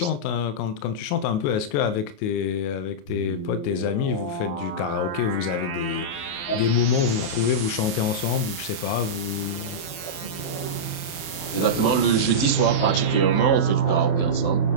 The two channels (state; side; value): late; right; 28 ms